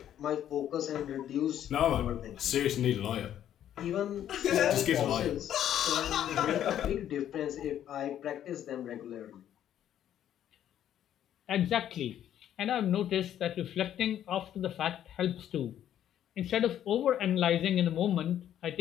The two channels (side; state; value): right; quieter; 10.8 dB